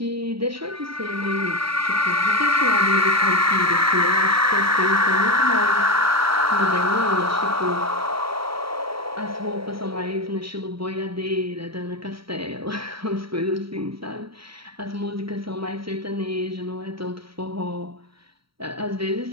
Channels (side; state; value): left; late; 0.75 ms